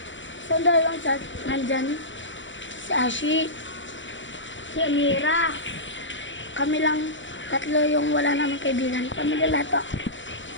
So dalawang sa nandyan. Si Ashi. Si Amira. Kami lang tatlo yung wala namin kaibigan. Kami lahat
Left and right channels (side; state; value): right; late; 0.55 ms